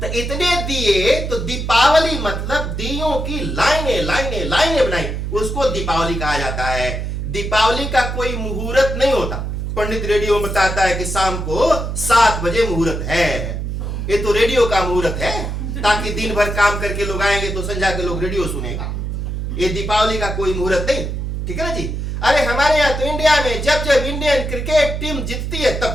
तो इतने दिए, तो दीपावली मतलब दियों की लाइनें लाइनें लाइनें बनाई, उसको दीपावली कहा जाता है। दीपावली का कोई मुहूर्त नहीं होता, पंडित रेडियो में बताता है कि शाम को 7 बजे मुहूर्त है, ये तो रेडियो का मुहूर्त है, ताकि दिन भर काम करके लोग आएंगे तो संजा के लोग रेडियो सुनेगा। ये दीपावली का कोई मुहूर्त नहीं, ठीक है ना जी। अरे हमारे यहाँ तो इंडिया में जब जब इंडियन क्रिकेट टीम जीतती है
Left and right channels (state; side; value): noise; right; hum, 3 dB below the sound